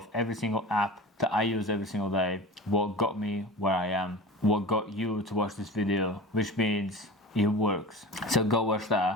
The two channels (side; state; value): both; normal; correlation 0.34